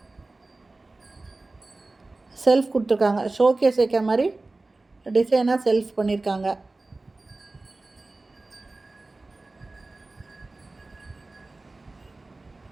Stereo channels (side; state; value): left; quieter; 3.2 dB